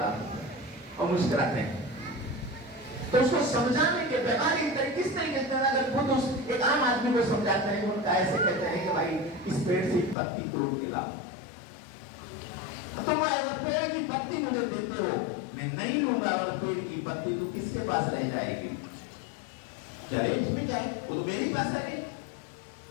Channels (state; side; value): drops out; right; at 10.2 s